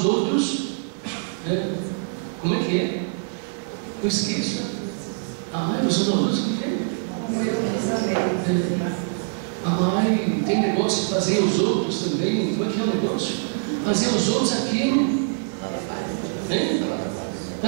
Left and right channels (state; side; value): silent; left; digital silence